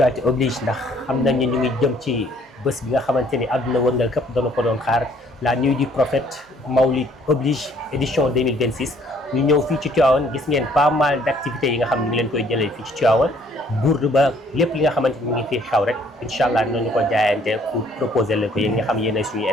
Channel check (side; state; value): both; normal; correlation 0.61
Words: oblige ndax xam nañ ne ñu ngi jëm ci bés bi nga xamante ni àdduna wërngal këpp doon ko doon xaar la nuit du prophète Mawlid oblige édition 2026 ñu ñëw fii ci Tivaouane gis ngeen pas mal d' activités yi nga xam ne ñu ngi leen koy jëlee fii ci Tivaouane bourde ba lépp li nga xamante ni mu ngi fii xew rek incha allah nañu ko jaayante pour proposer leen ko yéen nga xam yéen ay suñuy